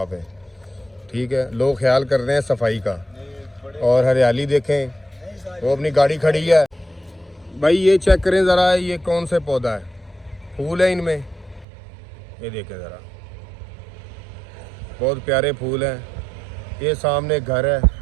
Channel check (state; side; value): drops out; left; at 11.7 s